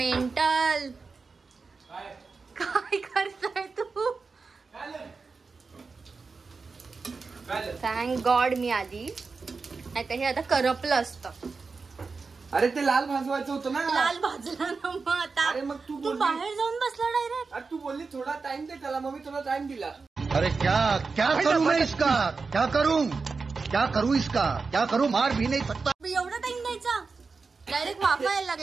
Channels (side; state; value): left; quieter; 4.5 dB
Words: काय करताय तू. थँक गॉड मी आली, नाही तर हे आता करपलं असतं. अरे ते लाल भाजवायचं होतं ना. लाल भाजला ना मग आता. अरे मग तू बाहेर जाऊन बसला डायरेक्ट. तू बोलली थोडा टाइम दे त्याला, मग मी तुला टाइम दिला. अरे क्या क्या करूं मैं इसका, क्या करूं इसका, क्या करूं, मार भी नहीं सकता. एवढा टाइम द्यायचा, डायरेक्ट वाफा यायला